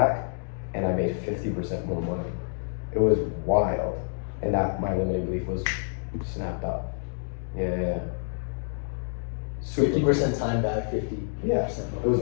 and I made 50% more money. It was wild, and that my limiting belief was snapped up. Yeah. 50% time back, 50%. Yeah, it was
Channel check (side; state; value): right; silent; digital silence